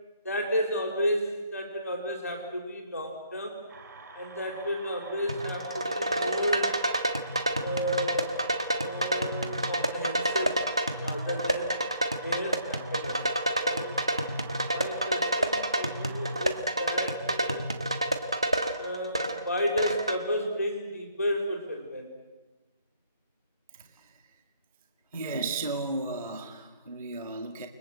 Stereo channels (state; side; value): inverted; both; correlation -0.66